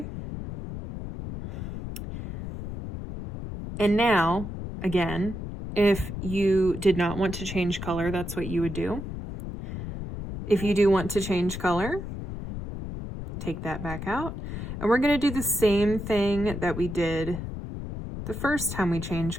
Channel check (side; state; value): left; noise; rumble, 7 dB below the sound